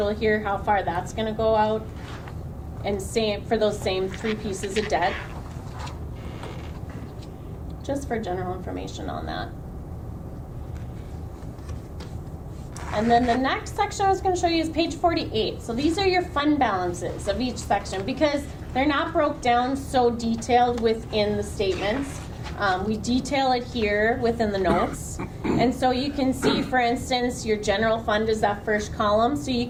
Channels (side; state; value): both; identical; correlation 1.00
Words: here, how far that's going to go out. And same for those same 3 pieces of debt. Just for general information on that. And then the next section I was going to show you is page 48. So these are your fund balances of each section, because they're not broke down so detailed within the statements. We detail it here within the notes. And so you can see, for instance, your general fund is that first column. So you